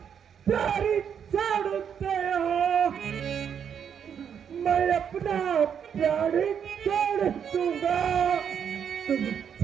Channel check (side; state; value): left; quieter; 7.9 dB